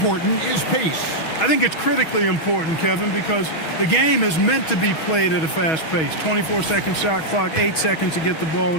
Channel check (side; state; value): right; late; 6.3 ms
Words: is pace? I think it's critically important, Kevin, because the game is meant to be played at a fast pace. 24-second shot clock, 8 seconds to get the ball